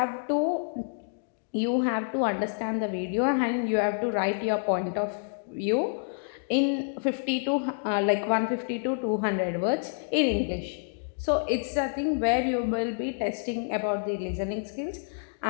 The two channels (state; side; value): silent; right; digital silence